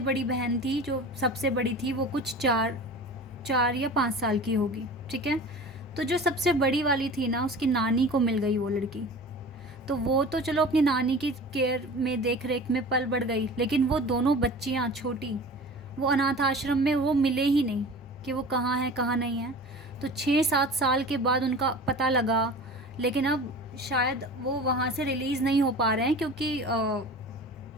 बहन थी, जो सबसे बड़ी थी, वो कुछ 4 या 5 साल की होगी, ठीक है। तो जो सबसे बड़ी वाली थी ना, उसकी नानी को मिल गई वो लड़की। तो वो तो चलो अपनी नानी की केयर में, देख रेख में पल बढ़ गई, लेकिन वो दोनों बच्चियाँ छोटी, वो अनाथ आश्रम में वो मिले ही नहीं कि वो कहाँ हैं कहाँ नहीं हैं। तो 6-7 साल के बाद उनका पता लगा, लेकिन अब शायद वो वहाँ से रिलीज़ नहीं हो पा रहे हैं, क्योंकि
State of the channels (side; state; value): both; normal; correlation 0.38